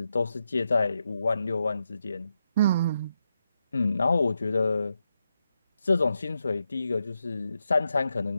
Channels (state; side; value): inverted; both; correlation -0.85